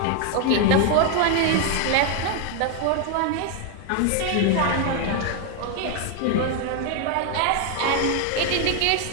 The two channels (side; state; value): both; different; correlation 0.01